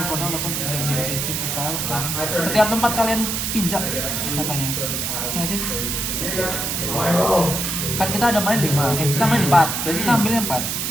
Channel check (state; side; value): noise; right; hiss, 1 dB below the sound